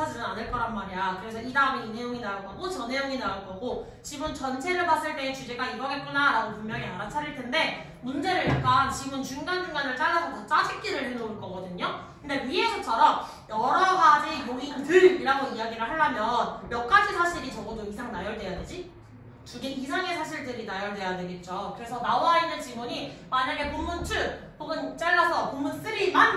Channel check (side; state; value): both; identical; correlation 1.00